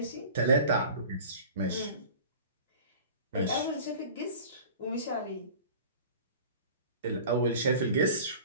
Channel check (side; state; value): both; inverted; correlation -0.41